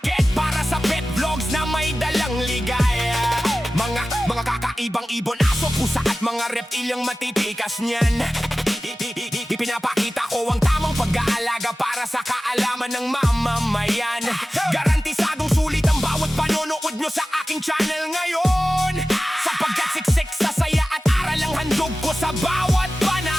para sa pet vlogs na may dalang ligaya. Mga kakaibang ibon, aso, pusa at mga reptilyang matitikas niyan. Ipinapakita ko ang tamang pag-aalaga para sa kaalaman ng mamamayan. Garantisadong sulit ang bawat panonood nyo sa aking channel ngayon, sapagkat siksik sa saya at aral ang handog ko sa bawat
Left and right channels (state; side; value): normal; both; correlation 0.96